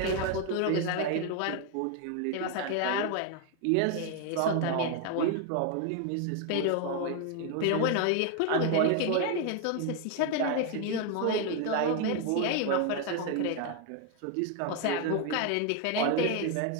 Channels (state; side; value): different; both; correlation 0.01